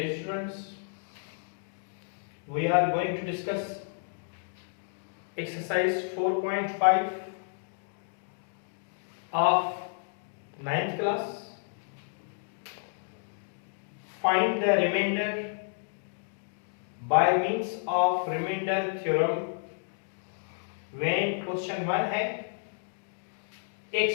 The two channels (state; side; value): silent; right; digital silence